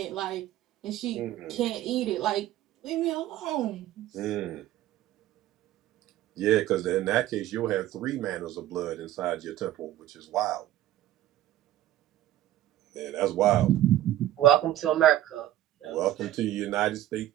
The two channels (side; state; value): left; quieter; 13.4 dB